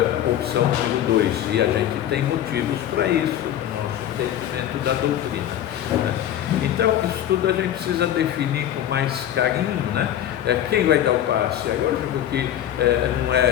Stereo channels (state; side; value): quieter; right; 11.3 dB